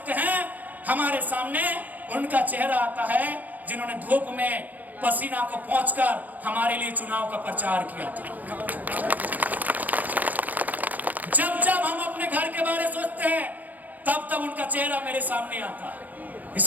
हैं, हमारे सामने उनका चेहरा आता है जिन्होंने धूप में पसीना को पोंछकर हमारे लिए चुनाव का प्रचार किया था। जब हम अपने घर के बारे में सोचते हैं, तब उनका चेहरा मेरे सामने आता है।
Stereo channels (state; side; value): late; left; 0.081 ms